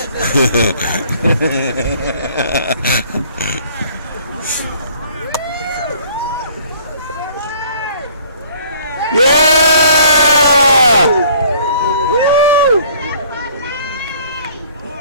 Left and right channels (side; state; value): both; inverted; correlation -0.56